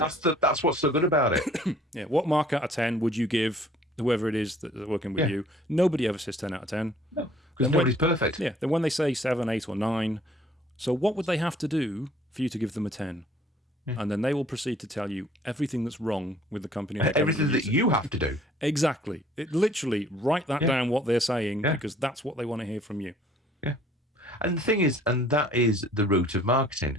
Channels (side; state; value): both; normal; correlation 0.57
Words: what's so good about it. Yeah. What mark out of 10 would you give whoever it is that's working with you? Nobody ever says 10 out of 10. No, because nobody's perfect. Yeah. Then when they say 7, 8, or 9, so what would they have to do for you to give them a 10? And then they will proceed to tell you everything that's wrong with the company. Everything that you have to do. Exactly. Literally, write that down, what they're saying, because that's what they want to hear from you. Yeah. And the thing is, and that is the root of